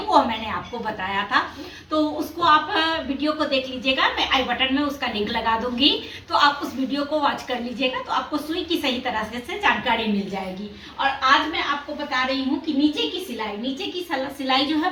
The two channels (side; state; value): both; identical; correlation 1.00